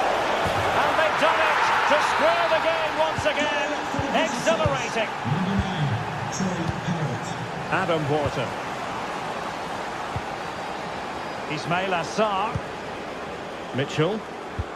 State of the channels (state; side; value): identical; both; correlation 1.00